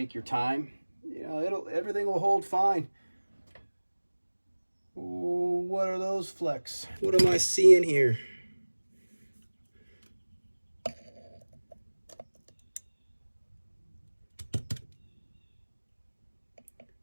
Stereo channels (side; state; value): both; inverted; correlation -1.00